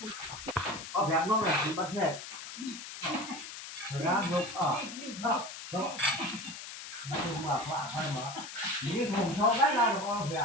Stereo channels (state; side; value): noise; left; hiss, 10 dB below the sound